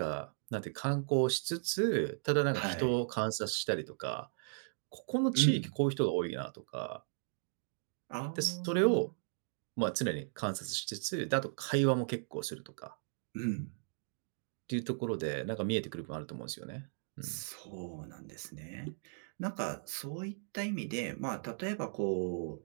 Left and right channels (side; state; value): left; silent; digital silence